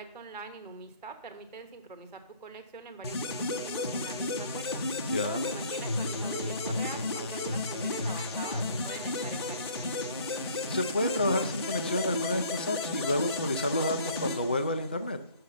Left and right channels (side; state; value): both; inverted; correlation -0.55